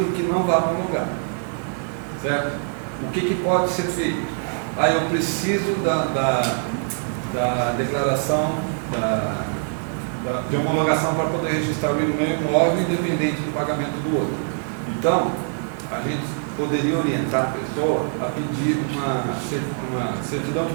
que não vai homologar. Certo? O que pode ser feito? Eu preciso da declaração de homologação para poder registrar o meu imóvel independente do pagamento do outro. Então, a gente poderia orientar a pessoa a pedir uma certidão de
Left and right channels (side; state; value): left; silent; 58 dB below the other